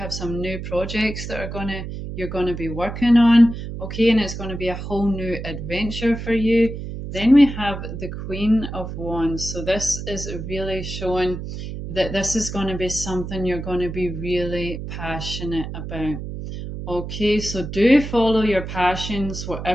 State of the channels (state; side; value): noise; right; hum, 7 dB below the sound